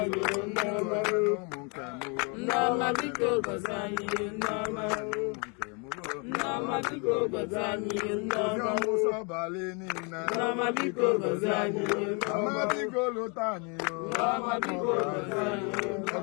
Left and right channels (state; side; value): quieter; right; 34.1 dB